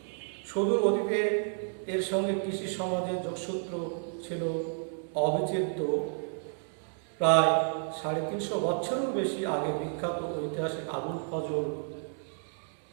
সুদূর অতীতে এর সঙ্গে কৃষি সমাজের যোগসূত্র ছিল অবিচ্ছেদ্য। প্রায় 350 বছরেরও বেশি আগে বিখ্যাত ঐতিহাসিক আবুল ফজল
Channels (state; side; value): silent; left; 57 dB below the other